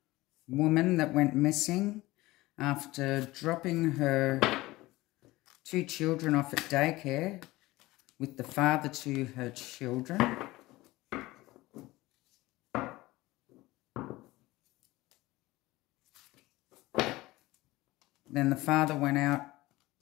woman that went missing after dropping her two children off at daycare with the father to her children. Then the father went out,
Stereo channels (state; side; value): quieter; right; 19.3 dB